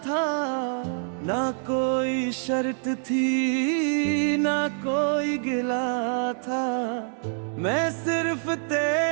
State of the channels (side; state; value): left; silent; 58 dB below the other